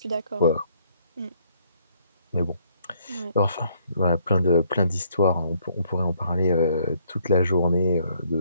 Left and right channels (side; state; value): both; inverted; correlation -0.67